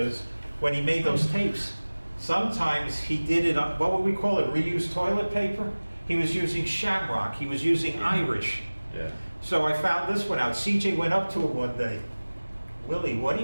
when he made those tapes, sometimes he did it on, what would we call it, reused toilet paper? He was using shamrock, he was using Irish. Yeah. So I found this one out. CJ went up to him one day. Willie, what are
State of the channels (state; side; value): inverted; both; correlation -1.00